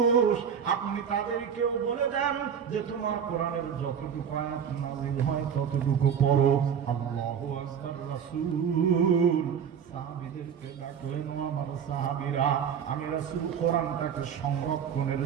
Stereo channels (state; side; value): quieter; left; 7.7 dB